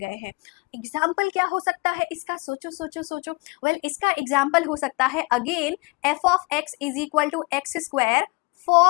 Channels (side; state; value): right; quieter; 27.3 dB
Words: हैं। एग्जाम्पल क्या हो सकता है इसका? सोचो सोचो सोचो। वेल, इसका एग्जाम्पल हो सकता है again f of x is equal to x square